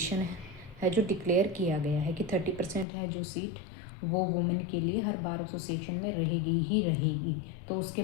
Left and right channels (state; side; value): drops out; right; at 2.9 s